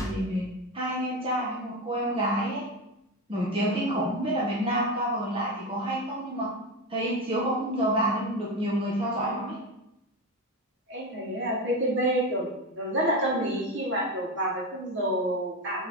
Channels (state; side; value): normal; both; correlation 0.19